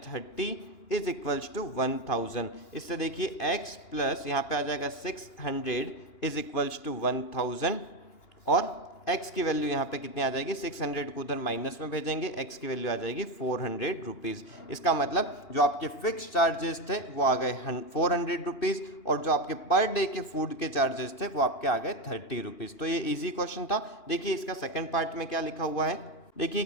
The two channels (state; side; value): late; right; 2.9 ms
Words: 30 इज इक्वल्स टू 1000। इससे देखिए x प्लस यहाँ पे आ जाएगा 600 इज इक्वल्स टू 1000 और x की वैल्यू यहाँ पे कितनी आ जाएगी, 600 को उधर माइनस में भेजेंगे, x की वैल्यू आ जाएगी 400 रुपीज़। इसका मतलब जो आपके फिक्स चार्जेस थे वो आ गए 400 रुपीज़ और जो आपके पर डे के फूड के चार्जेस थे वो आपके आ गए 30 रुपीज़। तो ये इजी क्वेश्चन था। देखिए इसका सेकंड पार्ट में क्या लिखा हुआ है, देखिए